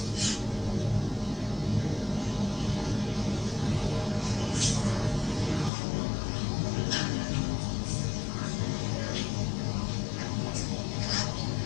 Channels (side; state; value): right; drops out; at 5.7 s